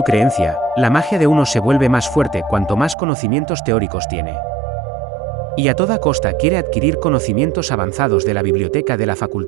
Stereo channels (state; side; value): drops out; left; at 3.0 s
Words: creencia, la magia de uno se vuelve más fuerte cuanto más conocimientos teóricos tiene. Y a toda costa quiere adquirir conocimientos avanzados de la biblioteca de la